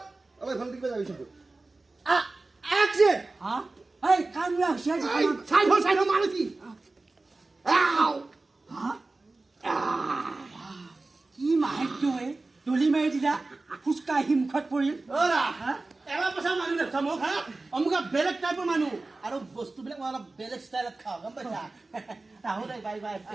Abang phone tiba jadi situ. Action. হা এই কামৰা হৈছে Sign ho mana sih? Ow. হা কি মাহেকটো এই দলি মাৰি দিলা ফুচকা হিমখত পৰিল Ora. Ewa pasal manu deh, sama ha? Omuka belek type manu. Aduh, bos tu belek malah belek style kau, kan baca? Tahu deh, bye.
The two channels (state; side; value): quieter; left; 3.3 dB